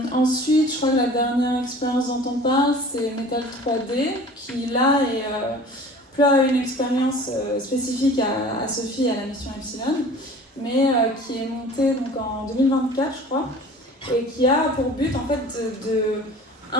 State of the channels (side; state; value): both; normal; correlation 0.44